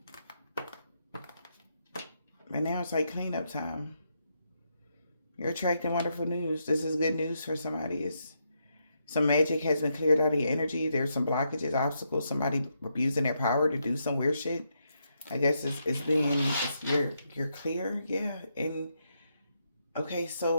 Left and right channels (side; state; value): both; inverted; correlation -0.80